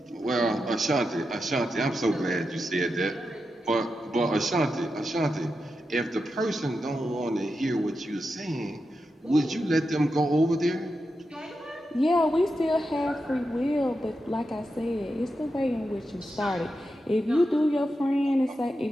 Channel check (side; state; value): both; normal; correlation 0.88